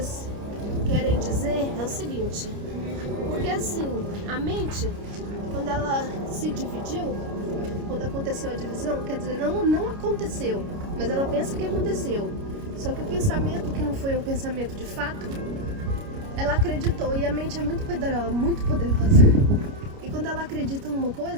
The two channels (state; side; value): late; left; 29 ms